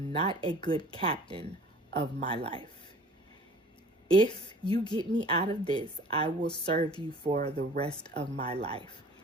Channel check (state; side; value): normal; both; correlation 0.48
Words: not a good captain of my life. If you get me out of this, I will serve you for the rest of my life.